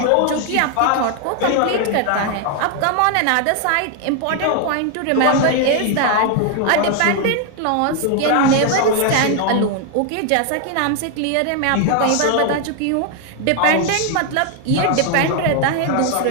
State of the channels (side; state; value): both; different; correlation 0.01